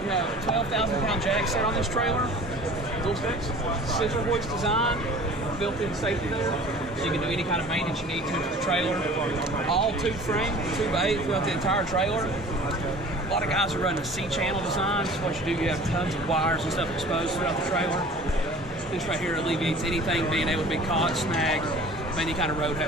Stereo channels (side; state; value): both; normal; correlation 0.45